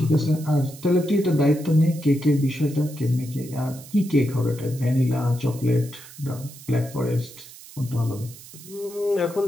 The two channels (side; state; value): right; noise; hiss, 18 dB below the sound